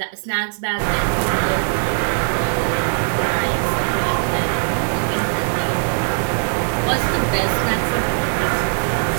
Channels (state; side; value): silent; left; 66 dB below the other